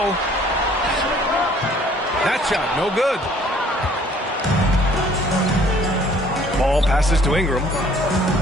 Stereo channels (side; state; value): both; normal; correlation 0.58